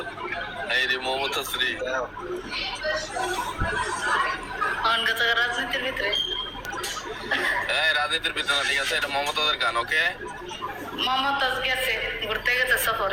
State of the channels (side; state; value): both; identical; correlation 1.00